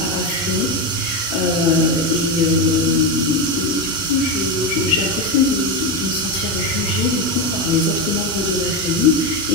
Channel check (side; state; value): both; normal; correlation 0.13